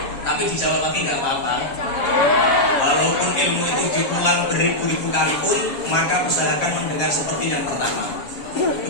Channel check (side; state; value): right; late; 6.7 ms